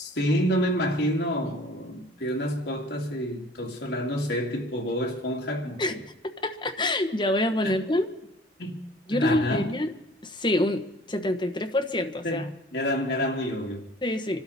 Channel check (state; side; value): normal; both; correlation 0.49